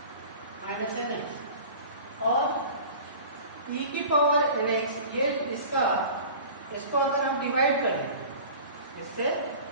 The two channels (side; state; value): both; inverted; correlation -0.40